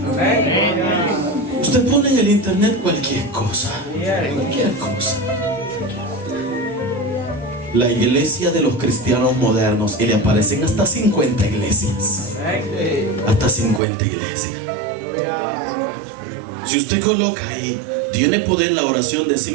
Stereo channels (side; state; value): left; drops out; at 13.8 s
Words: Usted pone en el internet cualquier cosa. Cualquier cosa. La iglesia de los cristianos modernos, y le aparecen hasta 50 iglesias. Hasta 50 iglesias. Si usted coloca ahí, tiene poder la oración de